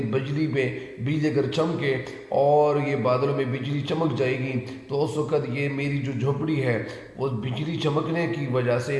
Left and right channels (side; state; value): both; identical; correlation 1.00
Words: بجلی اگر چمکے اور یہ بادلوں میں بجلی چمک جائے گی تو اس وقت یہ میری جو جھونپڑی ہے وہ بجلی چمکنے کی وجہ سے